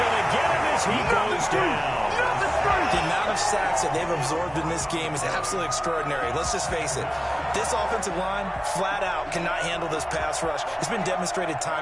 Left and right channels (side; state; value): both; identical; correlation 1.00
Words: to get him as he goes down. The amount of sacks that they've absorbed in this game is absolutely extraordinary. Let's just face it. This offensive line, flat out, cannot handle this pass rush. It's been demonstrated